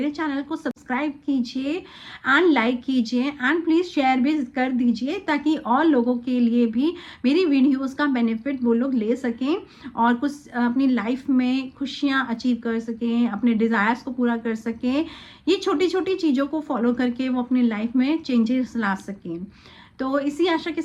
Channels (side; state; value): both; identical; correlation 1.00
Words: चैनल को सब्सक्राइब कीजिए एंड लाइक कीजिए, एंड प्लीज़ शेयर भी कर दीजिए, ताकि और लोगों के लिए भी मेरी वीडियोस का बेनिफिट वो लोग ले सकें और कुछ अपनी लाइफ में खुशियाँ अचीव कर सकें, अपने डिज़ायर्स को पूरा कर सकें। ये छोटी छोटी चीज़ों को फॉलो करके वो अपनी लाइफ में चेंजेस ला सकें। तो इसी आशा के